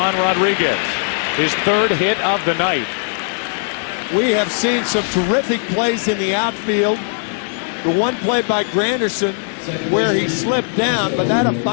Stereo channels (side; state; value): right; silent; digital silence